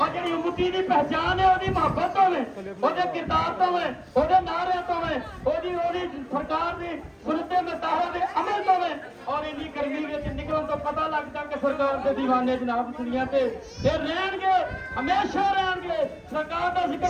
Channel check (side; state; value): both; identical; correlation 1.00